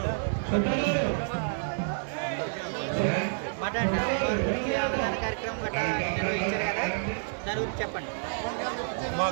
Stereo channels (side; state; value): left; silent; 59 dB below the other